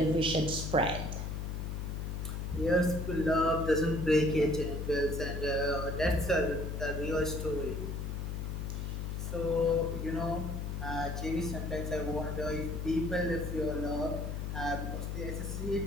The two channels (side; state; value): left; noise; hum, 3 dB below the sound